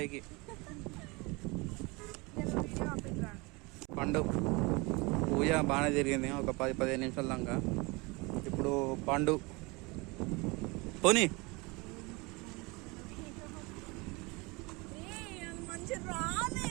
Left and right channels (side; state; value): left; quieter; 26.3 dB